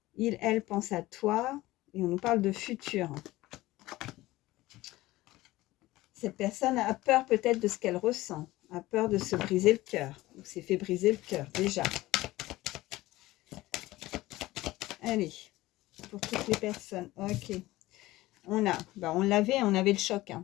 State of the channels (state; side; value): quieter; right; 17.9 dB